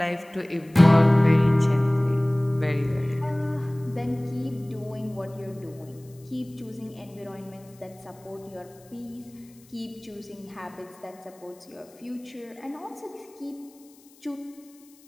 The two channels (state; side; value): noise; left; hiss, 27 dB below the sound